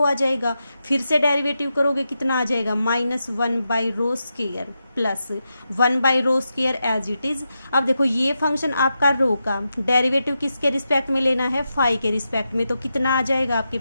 आ जाएगा। फिर से डेरिवेटिव करोगे कितना आ जाएगा, -1 by rho square plus 1 by rho square as it is. अब देखो ये फंक्शन आपका रो का डेरिवेटिव किसके रिस्पेक्ट में लेना है, फाई के रिस्पेक्ट में, तो कितना आ जाएगा आपके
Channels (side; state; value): both; inverted; correlation -0.88